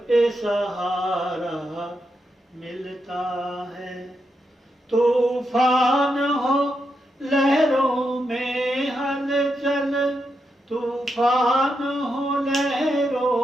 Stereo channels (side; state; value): both; normal; correlation 0.84